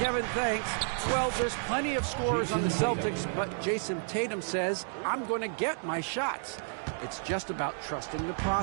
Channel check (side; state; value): left; silent; digital silence